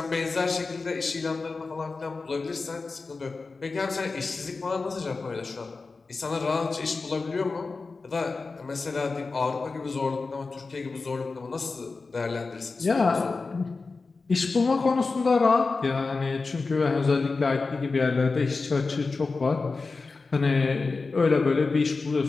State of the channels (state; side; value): quieter; right; 4.1 dB